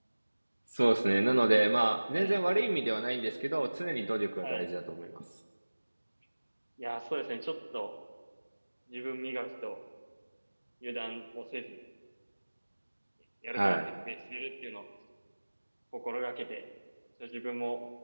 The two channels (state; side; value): inverted; both; correlation -1.00